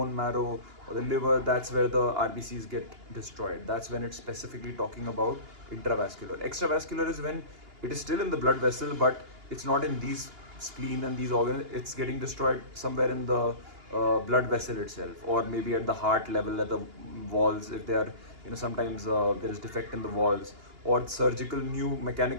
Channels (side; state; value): left; late; 2.9 ms